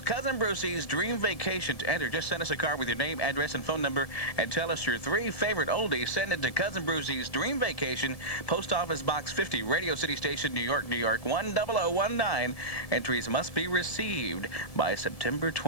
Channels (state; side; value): late; right; 1.7 ms